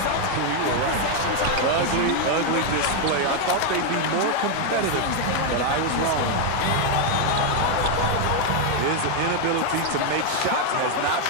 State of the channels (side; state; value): both; different; correlation 0.01